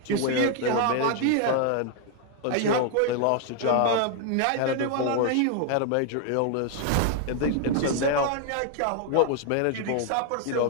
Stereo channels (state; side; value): different; both; correlation 0.00